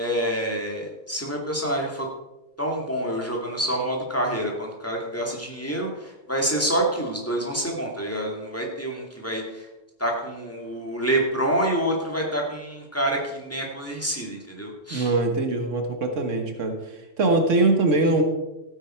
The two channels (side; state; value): both; normal; correlation -0.14